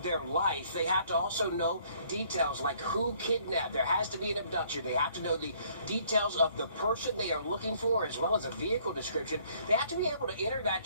their life. They have to also know details like who kidnapped. There has to be an abduction. They have to know the details of the person they are looking for, as well as a vehicle description. They have to be able to enter that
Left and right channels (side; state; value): both; inverted; correlation -0.62